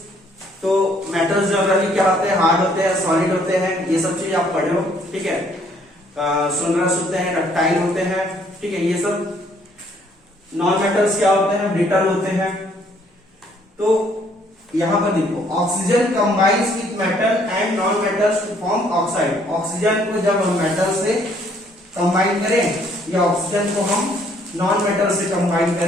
तो मेटल्स जनरली क्या होते हैं, हार्ड होते हैं, सॉलिड होते हैं, ये सब चीज आप पढ़े हो, ठीक है। सोनरस होते हैं, डक्टाइल होते हैं, ठीक है। ये सब नॉन मेटल्स क्या होते हैं, ब्रिटल होते हैं। तो यहां पर देखो oxygen combines with metal and non metals to form oxide. Oxygen को जब हम मेटल से कंबाइन करें या ऑक्सीजन को हम नॉन मेटल से कंबाइन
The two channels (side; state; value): both; normal; correlation 0.64